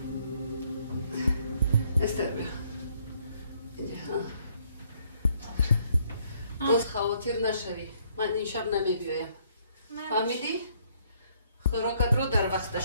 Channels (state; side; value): inverted; both; correlation -0.67